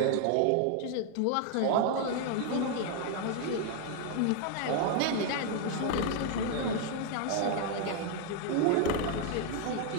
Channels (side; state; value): both; different; correlation 0.00